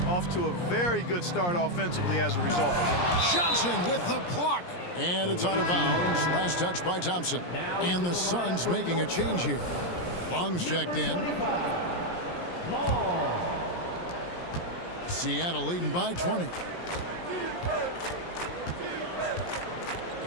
Off to a very good start offensively as a result. Johnson with the block. And it's out of bounds. Last touch by Thompson. And the Suns making a change here. Long's checked in. Seattle leading by 20.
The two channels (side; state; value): right; late; 17 ms